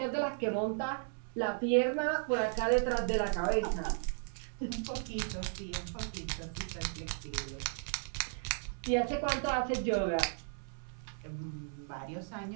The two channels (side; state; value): left; silent; 54 dB below the other